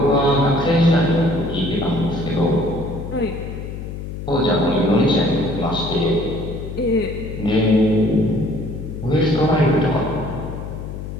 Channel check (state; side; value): noise; left; hum, 8 dB below the sound